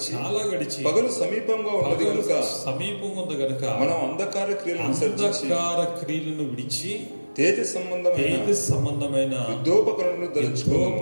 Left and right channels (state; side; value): inverted; both; correlation -1.00